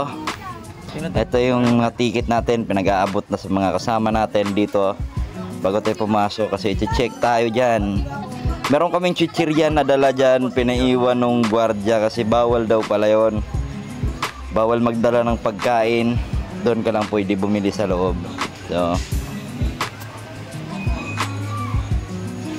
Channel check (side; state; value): both; identical; correlation 1.00